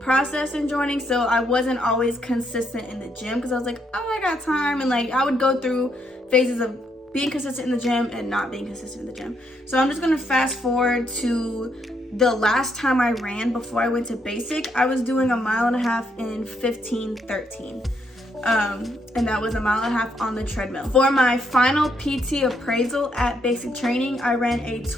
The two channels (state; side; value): normal; both; correlation 0.75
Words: in joining, so I wasn't always consistent in the gym, because I was like, oh, I got time, and like I would go through phases of being consistent in the gym and not being consistent in the gym. So I'm just gonna fast forward to the last time I ran before I went to basic. I was doing a mile and a half in 15:13. And that was a mile and a half on the treadmill. For my final PT appraisal at basic training, I ran a